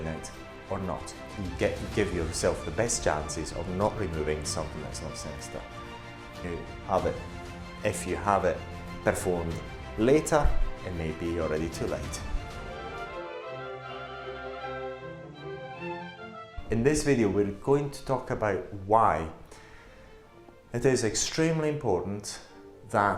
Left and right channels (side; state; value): both; identical; correlation 1.00